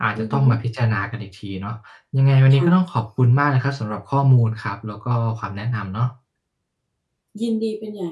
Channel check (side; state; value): both; identical; correlation 1.00